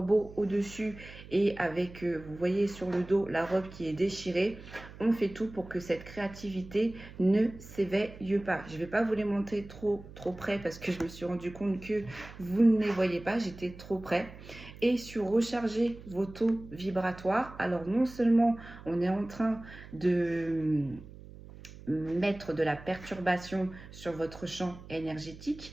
au-dessus et avec, vous voyez sur le dos, la robe qui est déchirée. On fait tout pour que cette créativité ne s'éveille pas. Je ne vais pas vous les montrer trop près parce que je me suis rendu compte que vous ne les voyez pas. J'étais trop près. Et sur recharger vos taux vibratoires, alors non seulement on est en train de mettre de la perturbation sur votre champ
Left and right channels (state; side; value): noise; right; hum, 17 dB below the sound